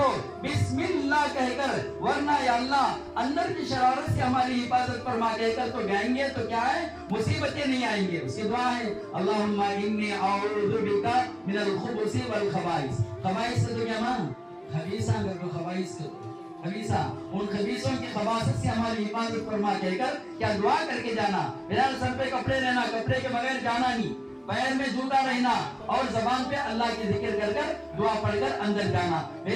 بسم اللہ کہہ کر، ورنہ یا اللہ اندر کی شرارت سے ہماری حفاظت فرما کہہ کر تو گائیں گے تو کیا ہے مصیبتیں نہیں آئیں گے۔ اس کی دعا ہے اللہم انی اعوذ بک من الخبث والخبائث۔ خبائث سے تو کیا ماں خبیثہ، اگر کو خبائث کو خبیثہ، ان خبیثوں کی خباثت سے ہماری حفاظت فرما کہہ کر کیا دعا کر کے جانا۔ بہرحال سر پہ کپڑے رہنا، کپڑے کے بغیر جانا نہیں، پیر میں جوتا رہنا، اور زبان پہ اللہ کی ذکر کر کر دعا پڑھ کر اندر جانا۔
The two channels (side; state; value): both; identical; correlation 1.00